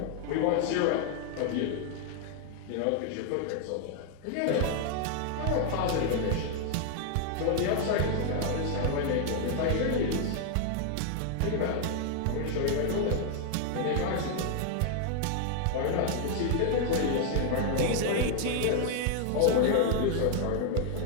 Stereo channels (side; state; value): both; different; correlation 0.00